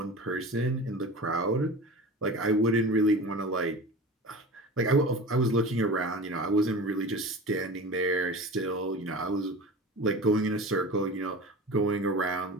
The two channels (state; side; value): normal; both; correlation 0.34